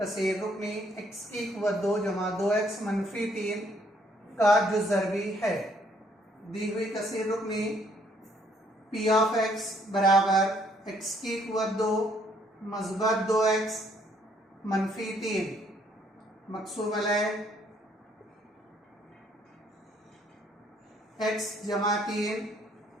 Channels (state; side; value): normal; both; correlation 0.66